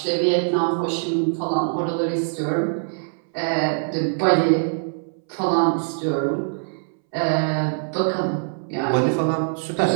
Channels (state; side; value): silent; left; 63 dB below the other